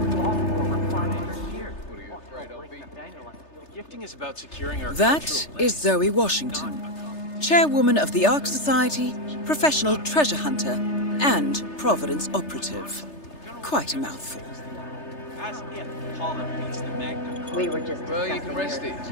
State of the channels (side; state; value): right; late; 3.3 ms